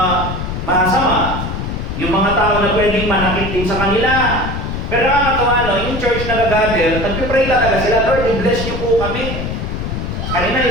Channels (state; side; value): noise; left; rumble, 4 dB below the sound